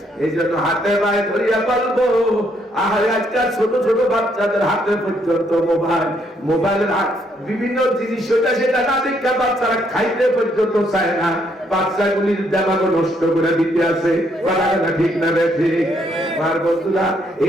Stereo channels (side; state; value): both; normal; correlation 0.72